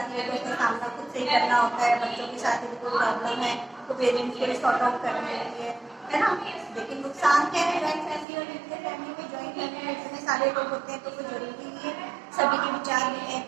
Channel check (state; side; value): drops out; left; at 8.2 s